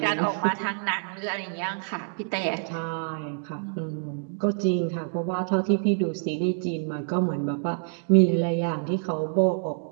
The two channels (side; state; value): left; silent; digital silence